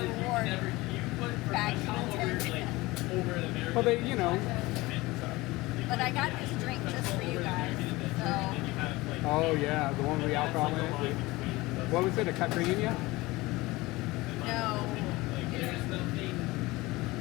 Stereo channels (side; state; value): right; quieter; 20.8 dB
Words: reward bad content. well, they, you know. But I got this drink just for you guys. So. Oh yeah, the one with the alcohol in it. What was it? A caipirinha? No.